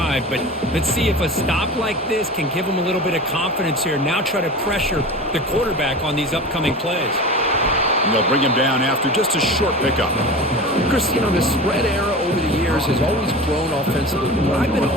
but let's see if a stop like this can give them a little bit of confidence here. Now try to pressure the quarterback on these upcoming plays. And they'll bring him down after just a short pickup. Chris, you know, the spread era over the years has always grown offensively. But I've been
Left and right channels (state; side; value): normal; both; correlation 0.32